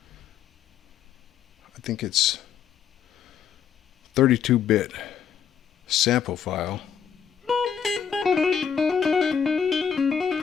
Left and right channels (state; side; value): quieter; right; 7.8 dB